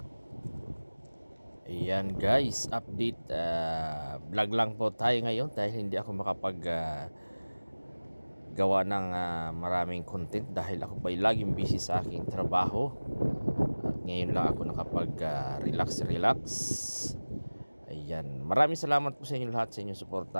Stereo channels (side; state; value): both; inverted; correlation -1.00